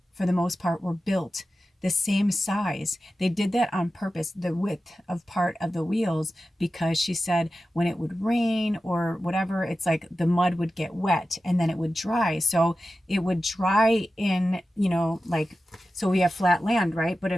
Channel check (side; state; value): both; normal; correlation 0.93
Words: for the most part, were built the same size. They did that on purpose, the width of part of the wheels, because she said when it would rain or whatever, it's like the mud would get wet and then it would dry. So it would dry in, you know, like, so we have flat land, right? But